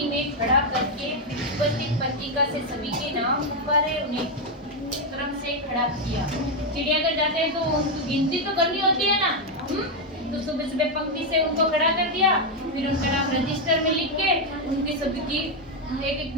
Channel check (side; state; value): both; normal; correlation 0.03